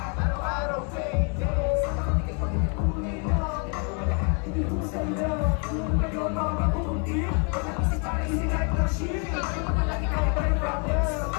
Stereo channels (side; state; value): right; quieter; 37.9 dB